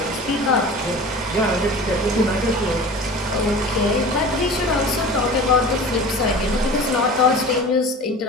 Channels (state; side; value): normal; both; correlation 0.37